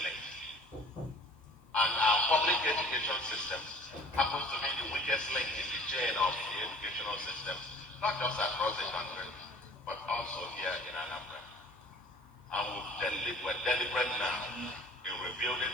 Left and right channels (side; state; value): both; normal; correlation 0.49